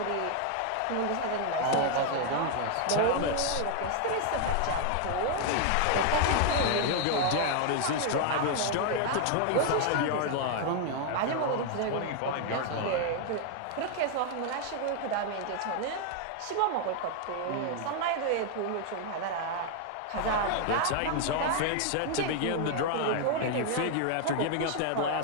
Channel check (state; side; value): different; both; correlation 0.00